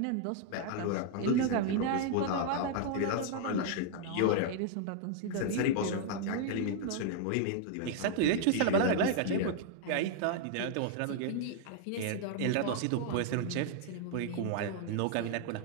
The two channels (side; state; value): both; different; correlation 0.00